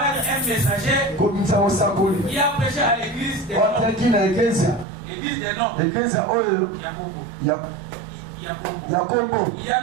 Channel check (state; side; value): drops out; left; at 4.9 s